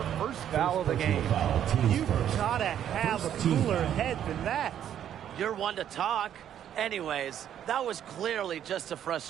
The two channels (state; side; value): quieter; left; 10.1 dB